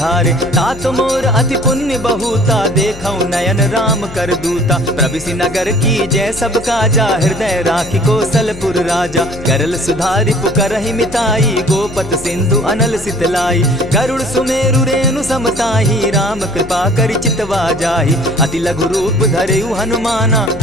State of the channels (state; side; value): noise; left; hum, 15 dB below the sound